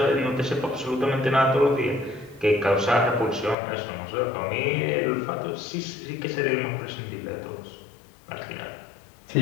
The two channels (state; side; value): drops out; right; at 3.6 s